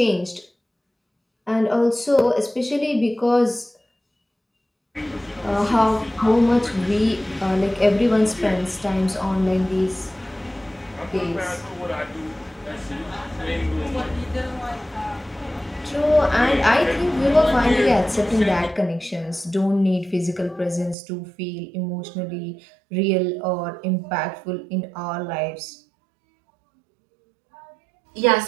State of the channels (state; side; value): drops out; left; at 21.0 s